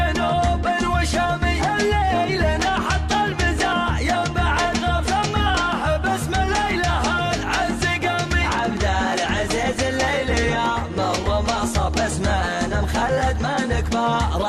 وشامي الليل نحط البزاع ينبع الغف سماه باسم الليله العز قامي عبد العزيز الليل يا مر ما صب اسمنا مخلد من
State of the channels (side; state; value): both; identical; correlation 1.00